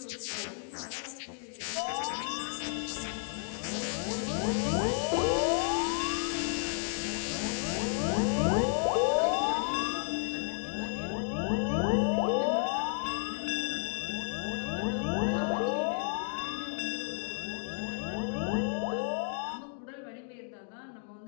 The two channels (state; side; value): silent; right; 56 dB below the other